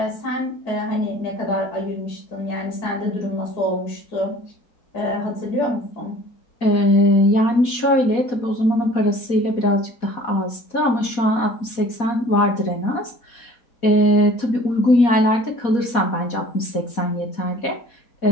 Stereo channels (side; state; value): right; late; 4.2 ms